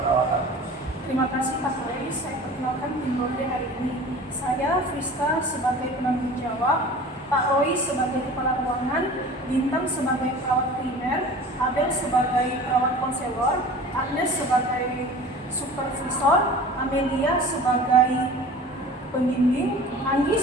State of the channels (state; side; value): normal; both; correlation 0.41